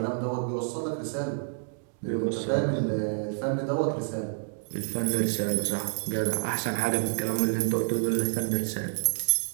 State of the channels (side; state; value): left; silent; digital silence